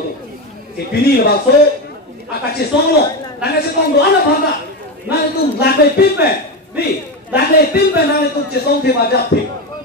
si pini la so akache songlo nanga se kong do ana bhanga na itu lakai pipe ni Lagle pimpe nang itu cesong te majap te.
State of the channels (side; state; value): both; normal; correlation 0.15